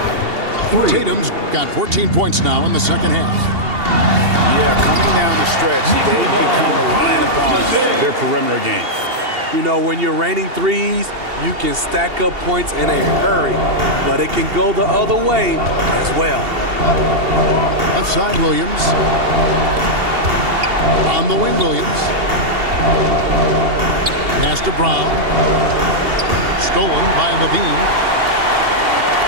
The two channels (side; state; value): left; late; 2.8 ms